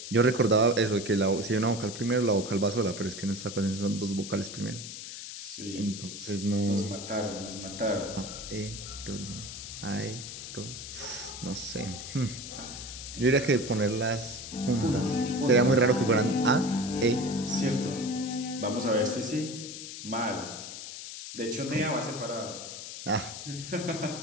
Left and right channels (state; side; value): noise; left; hiss, 10 dB below the sound